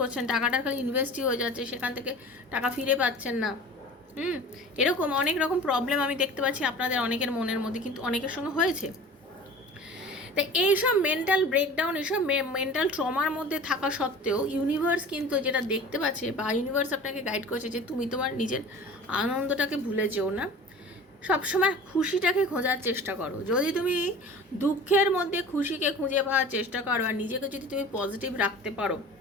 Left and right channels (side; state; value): both; normal; correlation 0.40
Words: টাকাটা খালি ইনভেস্টই হয়ে যাচ্ছে, সেখান থেকে টাকা ফিরে পাচ্ছেন না। এরকম অনেক রকম প্রবলেম আমি দেখতে পাচ্ছি আপনাদের অনেকের মনের মধ্যে, কিন্তু অনেকের সঙ্গে হয়েছে। তাই এইসব মেন্টাল ব্রেকডাউন, এইসব মেন্টাল ট্রমার মধ্যে থাকা সত্ত্বেও ইউনিভার্স কিন্তু যেটা দেখতে পাচ্ছে, বা ইউনিভার্স আপনাকে গাইড করছে যে তুমি তোমার নিজের আনন্দটাকে ভুলে যেও না, সবসময় খুশিটাকে খোঁজার চেষ্টা করো। যদি তুমি দুঃখের মধ্যে খুশিকে খুঁজে পাওয়ার চেষ্টা করো আর নিজেকে যদি তুমি পজিটিভ রাখতে পারো,